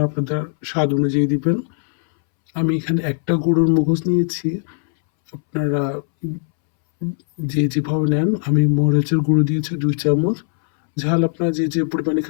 আপনাদের স্বাদ অনুযায়ী দিবেন। আমি এখানে একটা গরুর মগজ নিয়েছি, আপনারা যেভাবে নেন। আমি মরিচের গুঁড়ো দিয়েছি 2 চামচ, ঝাল আপনারা যে পরিমাণে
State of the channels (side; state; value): right; silent; 64 dB below the other